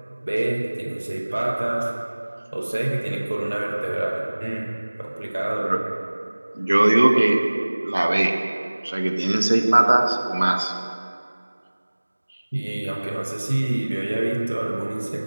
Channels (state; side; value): inverted; both; correlation -1.00